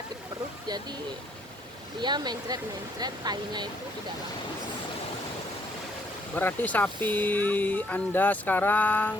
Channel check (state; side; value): normal; both; correlation 0.67